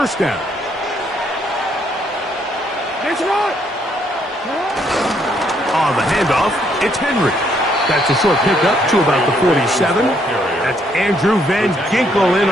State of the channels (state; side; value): normal; both; correlation 0.70